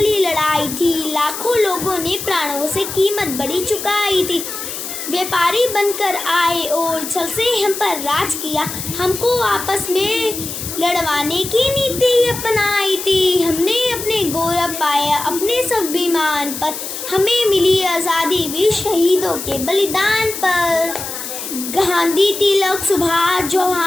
लड़ाई थी, लाखों लोगों ने प्राणों से कीमत बड़ी चुकाई थी। व्यापारी बनकर आए और छल से हम पर राज किया, हमको आपस में लड़वाने की नीति अपनाई थी। हमने अपने गौरव पाया अपने स्वाभिमान पर, हमें मिली आज़ादी भी शहीदों के बलिदान पर। गांधी, तिलक, सुभाष,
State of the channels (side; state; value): left; noise; hiss, 7 dB below the sound